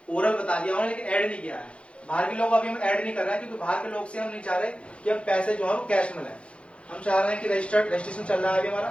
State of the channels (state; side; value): late; right; 0.060 ms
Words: ओरल बता दिया उन्होंने, लेकिन ऐड नहीं किया है। बाहर के लोग अभी हम ऐड नहीं कर रहे हैं, क्योंकि बाहर के लोग से हम नहीं चाह रहे कि हम पैसे जो है वो कैश में लें। हम चाह रहे हैं कि रजिस्ट्रेशन चल रहा है अभी